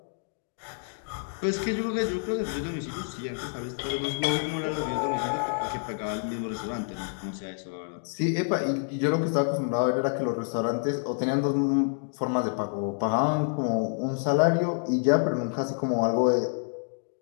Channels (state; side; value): silent; right; digital silence